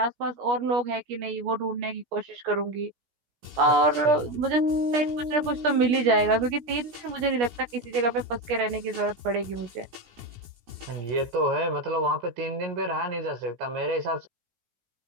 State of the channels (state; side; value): late; left; 17 ms